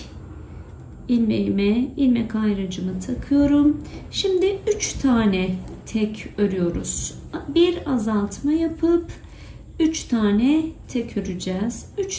ilmeğime ilmek ayrıcımı takıyorum. Şimdi 3 tane tek örüyoruz. Bir azaltma yapıp 3 tane tek öreceğiz.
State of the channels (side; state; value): both; identical; correlation 1.00